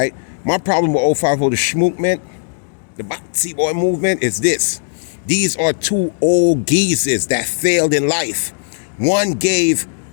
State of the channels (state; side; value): silent; right; digital silence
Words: My problem with 050 the Schmook man, the Batsy Boy movement, is this. These are two old geezers that failed in life. One gave